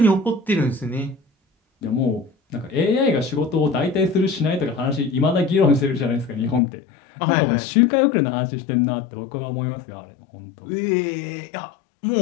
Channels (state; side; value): drops out; right; at 6.6 s